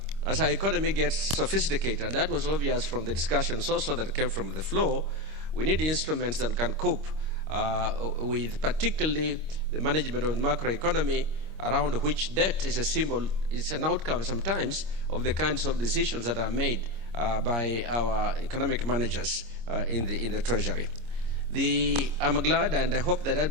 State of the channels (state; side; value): late; left; 26 ms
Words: as our economy gets sophisticated, and that was obvious from the discussions also that came from the floor, we need instruments that can cope with particularly the management of the macroeconomy, around which debt is a symbol, it's an outcome sometimes of the kinds of decisions that are made by our economic managers in the Treasury. I'm glad, and I hope that